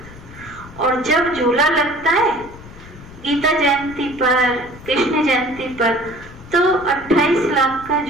और जब झूला लगता है गीता जयंती पर, कृष्ण जयंती पर तो 28 लाख का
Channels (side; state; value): left; noise; rumble, 18 dB below the sound